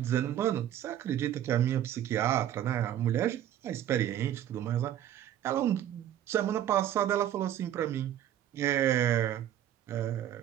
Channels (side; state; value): left; quieter; 11.3 dB